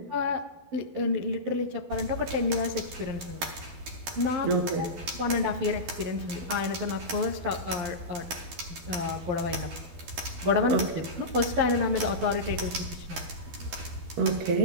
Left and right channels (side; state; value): left; late; 12 ms